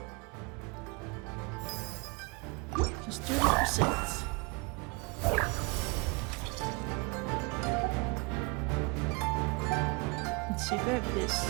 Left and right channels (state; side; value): quieter; left; 29.0 dB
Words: Just 30%. Let's see, grab this.